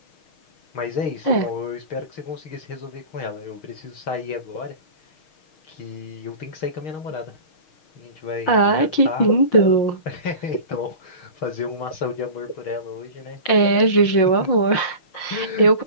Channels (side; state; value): right; late; 6.4 ms